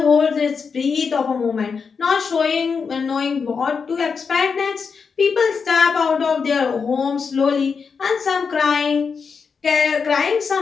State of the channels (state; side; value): quieter; right; 5.6 dB